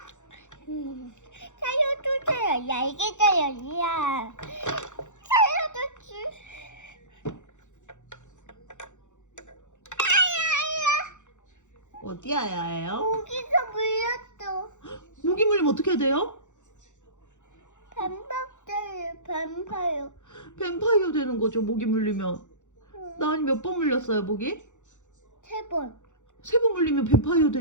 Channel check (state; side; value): late; right; 0.85 ms